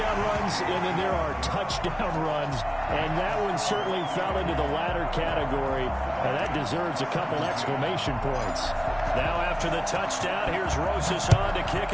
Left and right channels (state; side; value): identical; both; correlation 1.00